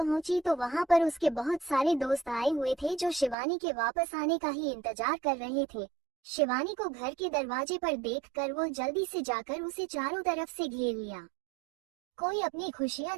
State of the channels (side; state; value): left; drops out; at 3.4 s